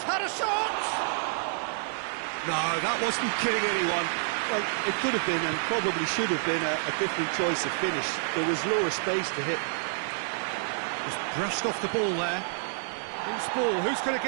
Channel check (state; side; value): silent; left; 59 dB below the other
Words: had a shot! No, that wasn't killing anyone. Well, it could have been and probably should have been a different choice of finish. There was lower space to hit. Just brushed off the ball there. Who's ball? Who's going to